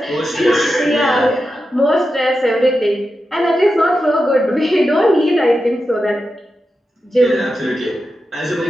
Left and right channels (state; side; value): normal; both; correlation 0.90